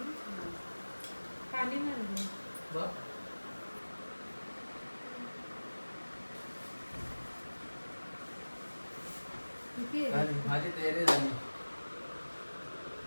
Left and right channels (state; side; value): inverted; both; correlation -1.00